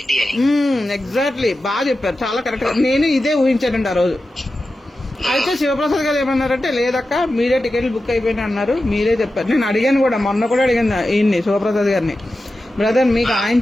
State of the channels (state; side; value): normal; both; correlation 0.92